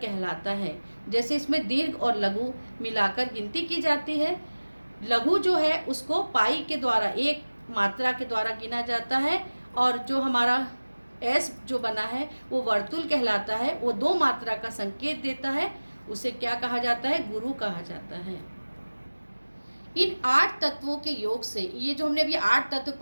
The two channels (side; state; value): both; inverted; correlation -1.00